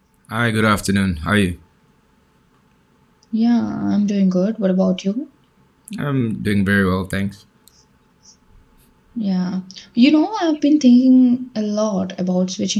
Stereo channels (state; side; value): identical; both; correlation 1.00